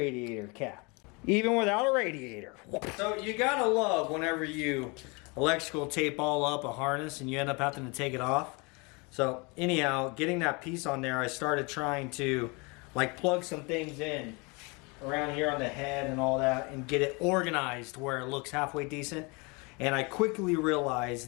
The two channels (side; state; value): right; quieter; 29.2 dB